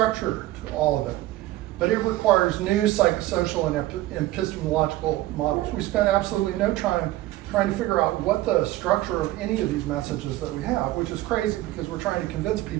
to all of it, but it requires new psychosocial and epistemological models. We spent absolutely no time trying to figure out what the structure of any of these messages that we have, which is crazy because we're trying to convince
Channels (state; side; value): quieter; left; 16.3 dB